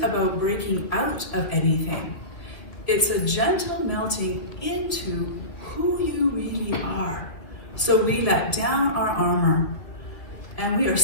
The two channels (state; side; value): late; right; 2.4 ms